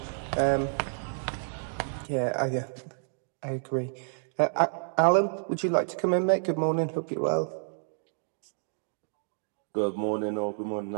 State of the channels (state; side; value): silent; left; digital silence